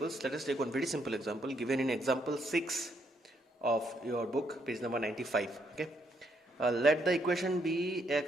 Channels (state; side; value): normal; both; correlation 0.74